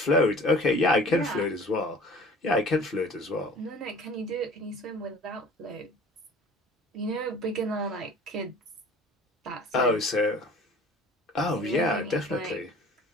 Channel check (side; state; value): both; normal; correlation 0.47